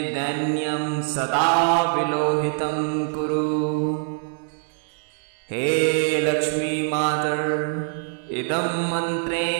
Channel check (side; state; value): left; silent; digital silence